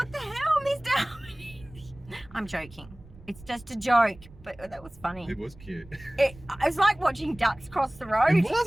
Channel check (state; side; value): noise; right; rumble, 21 dB below the sound